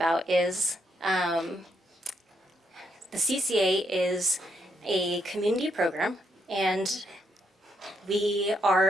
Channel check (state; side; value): normal; both; correlation 0.77